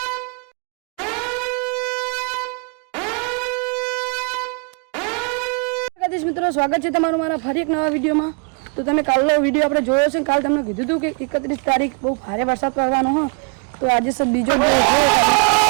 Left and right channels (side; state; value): left; quieter; 35.8 dB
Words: મિત્રો સ્વાગત છે તમારું મારા ફરી એક નવા વિડીયોમાં. તો તમે કાલનો વિડીયો આપણે જોયો છે. કાલ તમને કીધું હતું કે 31 તારીખ બહુ ભારે વરસાદ પડવાનો હોય. તો આજે સર બીજો